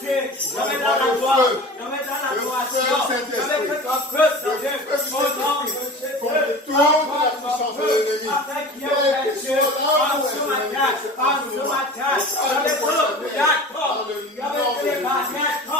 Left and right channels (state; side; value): normal; both; correlation 0.36